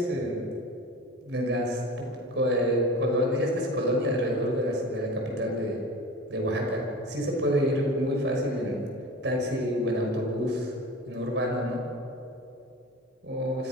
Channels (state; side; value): normal; both; correlation 0.34